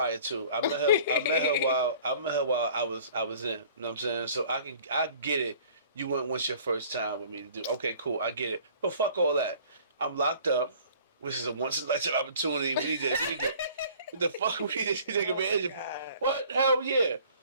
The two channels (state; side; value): inverted; both; correlation -0.51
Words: to. I met her. I met her while I was in. You know what I'm saying? So I get it. You went once your first time with me to do. Okay, cool. I get it. But fuck all that. I'm locked up. Which is a once in a lifetime opportunity. We need to. What the fuck? We need to take advantage of. What? Hell yeah. You know